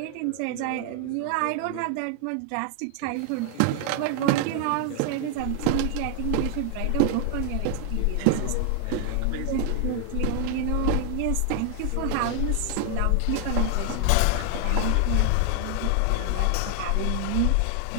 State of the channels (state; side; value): different; both; correlation 0.00